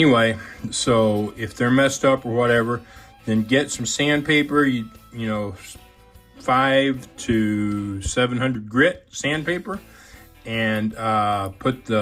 so if they're messed up or whatever, then get some sandpaper, you know, 500 to 700 grit sandpaper, and put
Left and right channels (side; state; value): both; identical; correlation 1.00